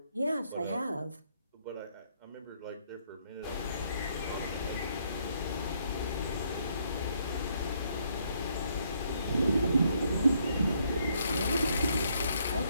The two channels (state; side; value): inverted; both; correlation -0.70